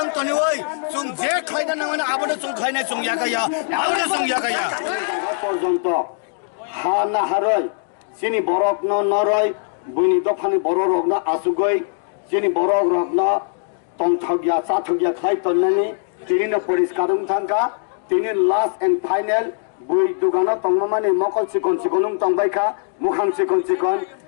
তনি চুং যে খাইনা না মানে আবনে চুং খাইনা চুং ইয়াকাইয়া আবনে চুং ইয়াকাইয়া পর্যন্ত হা না হারই চিনি বরক নরই বুনি দফানি বড় রগ না আসুগই চিনি বরক রগ না tongthagya chathagya khai tonnani tini no poriskar thangka tini last and final bui dugana tongmani mokol sikon sikonum tongbaikha mukham sikon sikon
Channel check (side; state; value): right; silent; digital silence